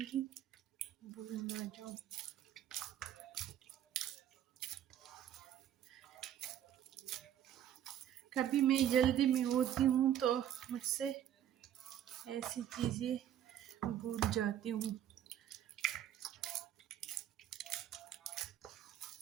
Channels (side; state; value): left; quieter; 10.7 dB